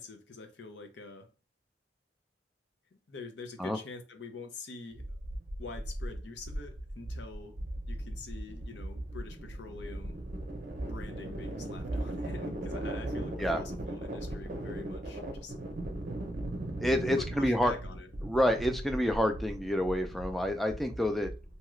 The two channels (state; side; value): normal; both; correlation 0.83